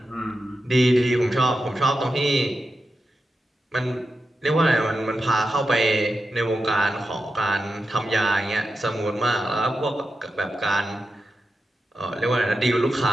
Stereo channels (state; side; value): normal; both; correlation 0.90